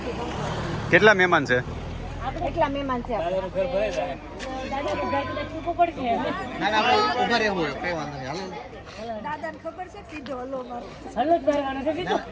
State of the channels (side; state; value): both; identical; correlation 1.00